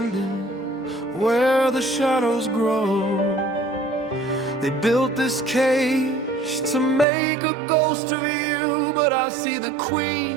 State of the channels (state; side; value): drops out; left; at 7.1 s